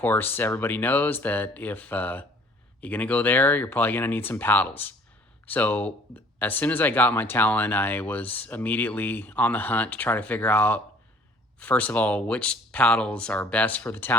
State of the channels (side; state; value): both; normal; correlation 0.53